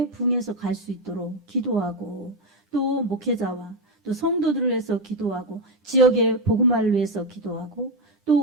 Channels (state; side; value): normal; both; correlation 0.08